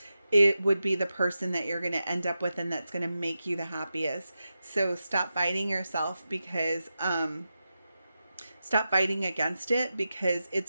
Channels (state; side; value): inverted; both; correlation -0.90